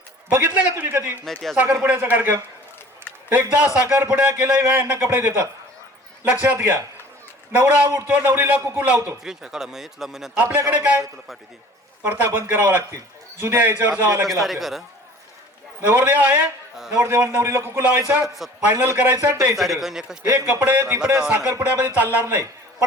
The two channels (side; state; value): both; normal; correlation 0.47